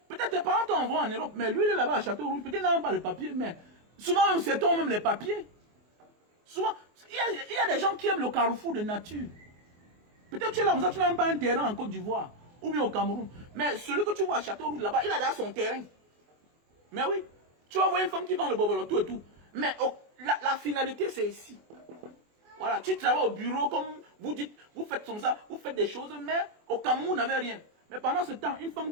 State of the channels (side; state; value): left; late; 24 ms